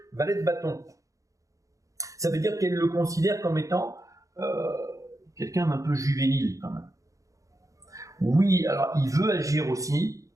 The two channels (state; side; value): late; left; 0.16 ms